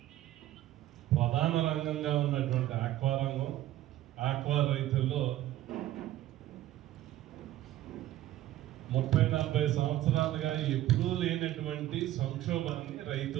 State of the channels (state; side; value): quieter; left; 14.2 dB